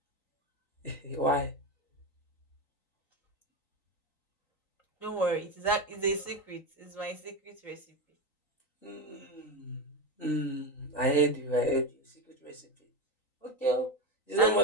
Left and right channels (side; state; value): right; late; 3.9 ms